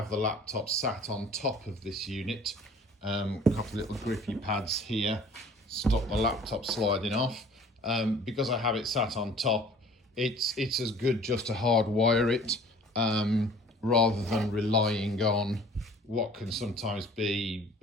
the laptop sat on top of this unit, a couple of little grippy pads here, stop the laptop sliding off. Because I have it sat on top, it's as good just to hardwire it, rather than relying on what can sometimes be,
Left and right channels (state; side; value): normal; both; correlation 0.49